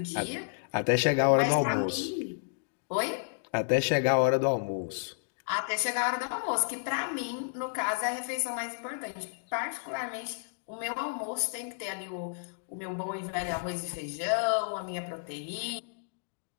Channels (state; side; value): silent; right; digital silence